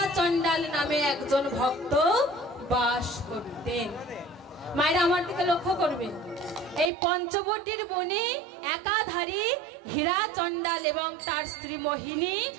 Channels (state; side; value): drops out; left; at 6.9 s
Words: চণ্ডাল নামে একজন ভক্ত বাস করতেন। মায়েরা আমার দিকে লক্ষ্য করবেন, এই পঞ্চবটির বনে একাধারে হীরা চণ্ডাল এবং তার স্ত্রী মোহিনী